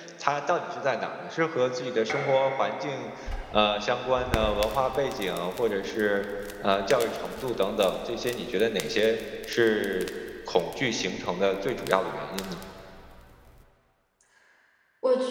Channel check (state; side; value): identical; both; correlation 1.00